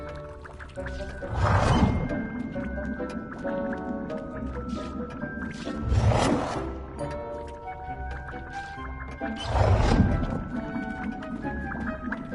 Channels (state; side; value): identical; both; correlation 1.00